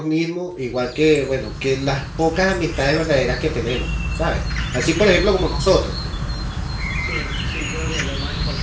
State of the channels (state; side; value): identical; both; correlation 1.00